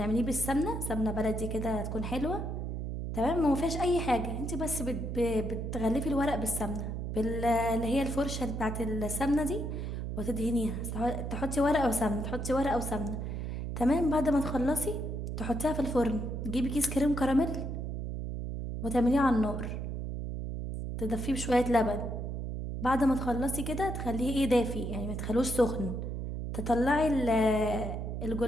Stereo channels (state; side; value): noise; right; hum, 4 dB below the sound